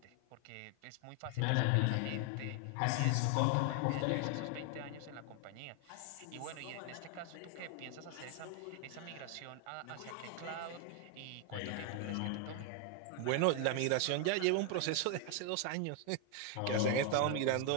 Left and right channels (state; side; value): different; both; correlation 0.01